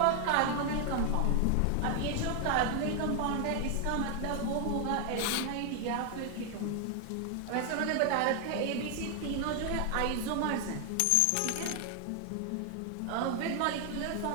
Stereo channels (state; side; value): different; both; correlation 0.00